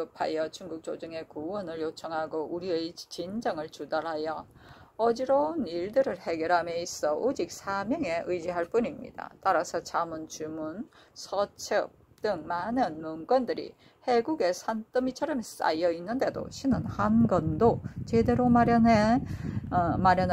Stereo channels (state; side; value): identical; both; correlation 1.00